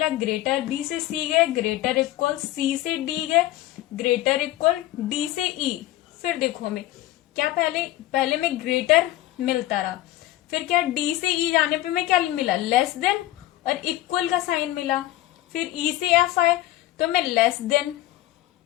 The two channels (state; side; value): quieter; right; 15.5 dB